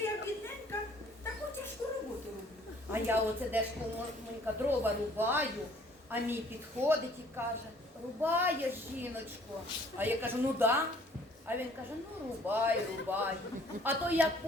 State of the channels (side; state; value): both; normal; correlation 0.57